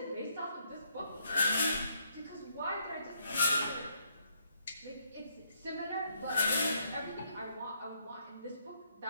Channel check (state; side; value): inverted; both; correlation -0.72